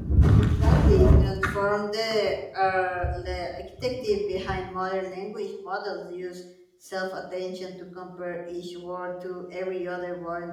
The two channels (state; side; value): identical; both; correlation 1.00